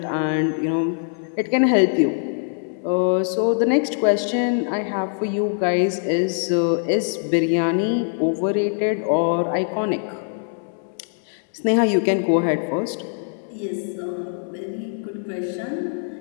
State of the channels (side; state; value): right; silent; 64 dB below the other